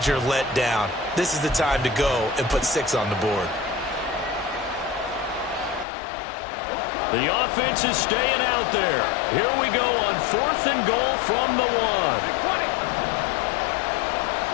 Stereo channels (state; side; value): drops out; right; at 5.9 s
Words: letdown. This is the time to go and put 6 on the board. The offense is staying out there. Here we go on 4th and goal from the 1.